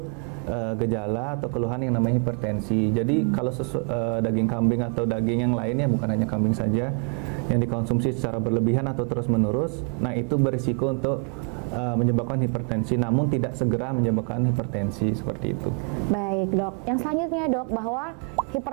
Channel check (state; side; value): quieter; left; 39.9 dB